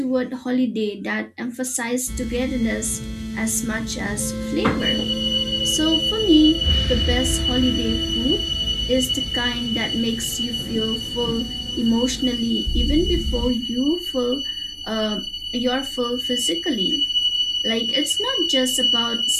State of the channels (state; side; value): identical; both; correlation 1.00